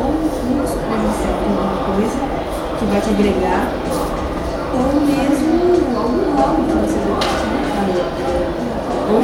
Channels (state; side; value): identical; both; correlation 1.00